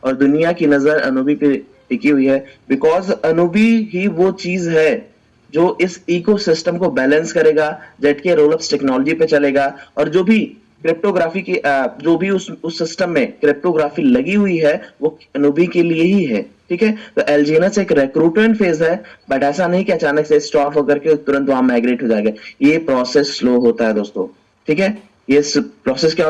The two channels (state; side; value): identical; both; correlation 1.00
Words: और दुनिया की नजर अनुबी पे टिकी हुई है, बिकॉज अनुबी ही वो चीज है जो इस इकोसिस्टम को बैलेंस करेगा, जेट के रोलअप्स टेक्नोलॉजी पे चलेगा, और जो भी क्रिप्टोग्राफी की जो भी उस सिस्टम में क्रिप्टोग्राफी लगी हुई है वो अनूबी के लिए ही है, ठीक है। तो एलजीएनएस एक रिक्रूटमेंट फेज है, बट ऐसा नहीं कि अचानक से स्टॉप होकर के तुरंत वहां माइग्रेट हो जाएगा। ये प्रोसेस स्लो होता है दोस्तों, ठीक है। ये प्रोसेस क्या